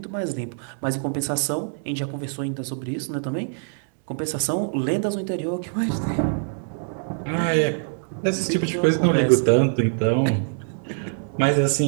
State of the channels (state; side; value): silent; left; 63 dB below the other